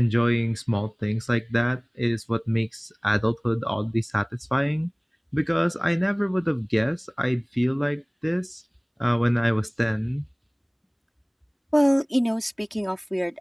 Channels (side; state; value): both; identical; correlation 1.00